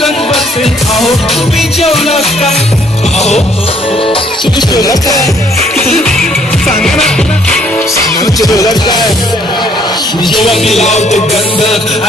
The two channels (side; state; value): both; normal; correlation 0.64